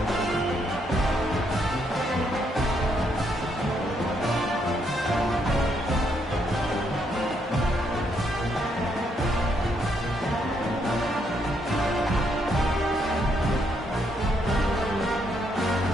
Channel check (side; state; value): both; normal; correlation 0.74